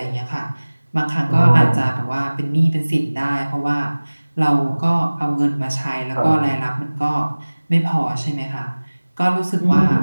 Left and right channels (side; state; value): both; inverted; correlation -1.00